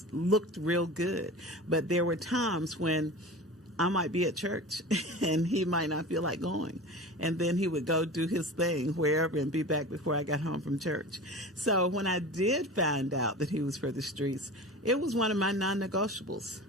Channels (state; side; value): normal; both; correlation 0.34